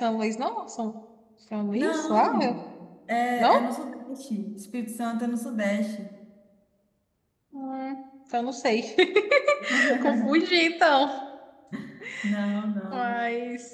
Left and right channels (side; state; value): both; identical; correlation 1.00